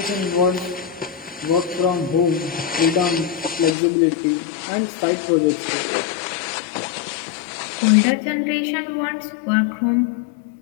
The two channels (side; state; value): right; drops out; at 3.8 s